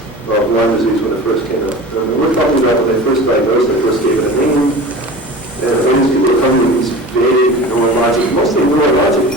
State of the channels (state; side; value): normal; both; correlation 0.36